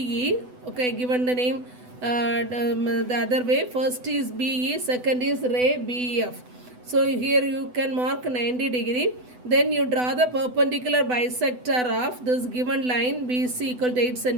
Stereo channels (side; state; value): left; late; 8.0 ms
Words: Okay, given the name the other way. First is BE. Second is ray BF. So here you can mark 90 degree. Then you draw the perpendicular bisector of this given line BC equal to 8